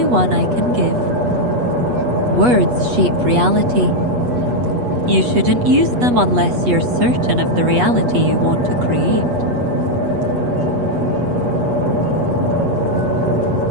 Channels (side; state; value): left; late; 8.2 ms